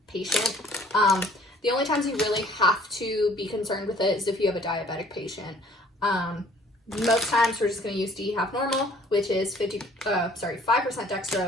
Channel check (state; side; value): normal; both; correlation 0.56